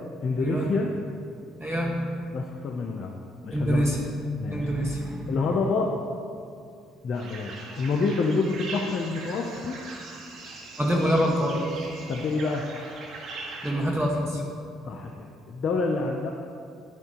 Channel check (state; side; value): normal; both; correlation 0.75